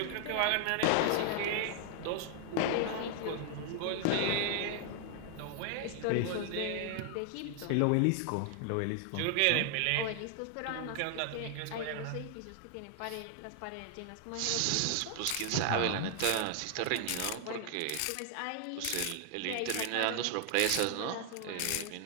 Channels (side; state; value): both; different; correlation 0.00